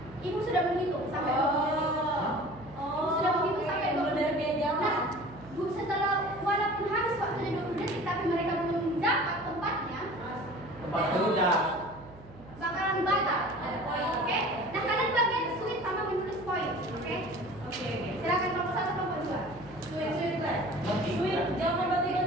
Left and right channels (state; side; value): noise; right; hum, 19 dB below the sound